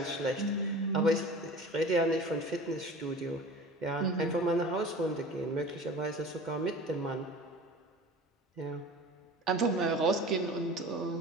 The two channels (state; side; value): normal; both; correlation 0.39